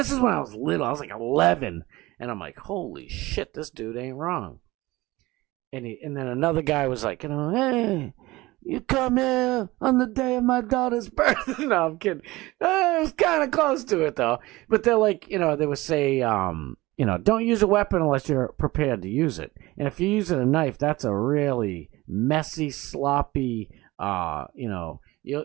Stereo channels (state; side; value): quieter; left; 19.8 dB